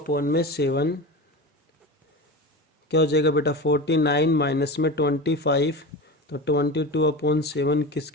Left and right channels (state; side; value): normal; both; correlation 0.28